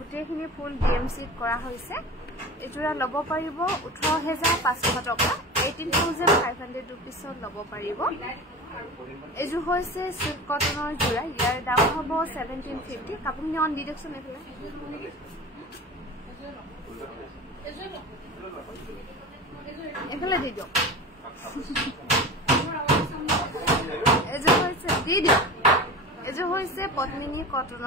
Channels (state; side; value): normal; both; correlation 0.32